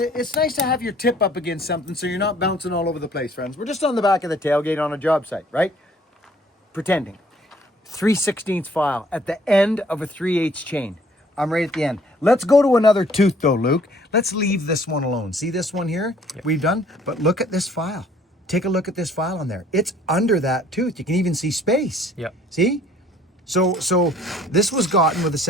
it's nice to have your tip up against something so you're not bouncing all over the place, friends. We're just on the back of the tailgate on a job site, right? Pretending. 3/16 file at the end of a 3/8 chain. I'm right at the end. Let's go to another tooth though, Luke. Let's leave this one alone. See this one here? Yep. We've done, but look at this file. Take a look at this file on there. It's under that tooth. You can even see space. Yep. See? So this was gotten with a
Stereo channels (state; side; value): normal; both; correlation 0.58